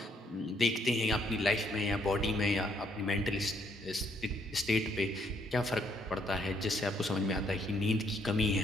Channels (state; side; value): normal; both; correlation 0.70